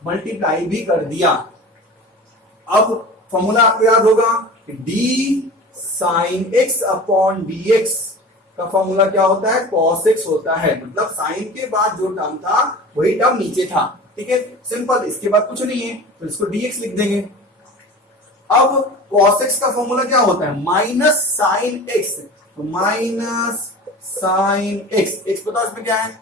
मल्टीप्लाई भी कर दिया। अब फॉर्मूला आपको याद होगा कि d sin x upon dx का फॉर्मूला क्या होता है, cos x होता है, मतलब साइन के बाद जो टर्म था वही टर्म नीचे था, ठीक है, सिंपल, इसके बाद कुछ नहीं है, तो इसको dx लिख देंगे। अब cos x का फॉर्मूला क्या होता है, माइनस साइन x, तो माइनस साइन x, x बताओ इसमें क्या है,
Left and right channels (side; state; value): both; normal; correlation 0.36